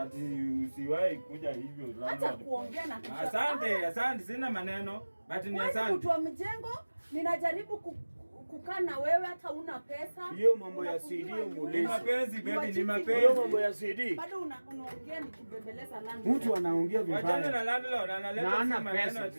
usiwahi kuja hivyo. Acha kuongea na asante, sina maneno. But ni asante. Mtu wa mjengo, ninajaribu kukaa na wewe hata una pesa. Hiyo mambo ya CD muulize. Ni mapenzi baby, ni mapenzi. Hiyo mambo ya CD. Bado unaongea nikibembeleza landlord. Mtu anaongea vibaya. Wachana na landlord, analeta maneno.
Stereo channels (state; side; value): inverted; both; correlation -1.00